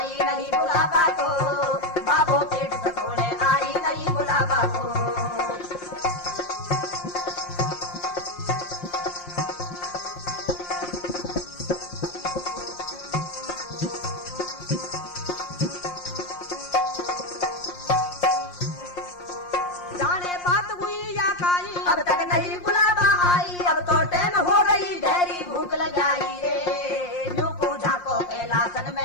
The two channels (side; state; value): right; late; 5.6 ms